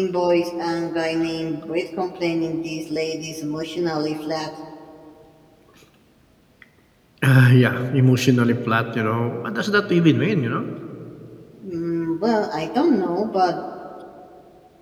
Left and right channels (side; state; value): both; identical; correlation 1.00